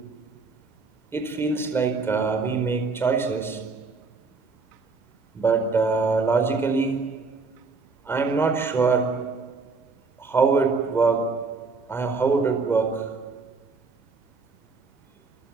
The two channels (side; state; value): left; quieter; 4.2 dB